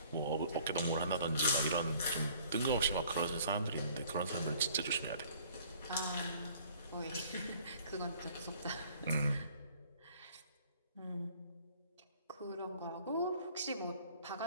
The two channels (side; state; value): both; inverted; correlation -0.55